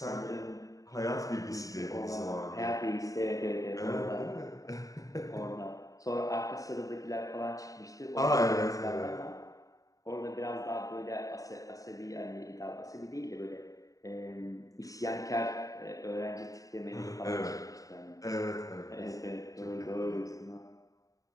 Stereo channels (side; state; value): right; late; 0.16 ms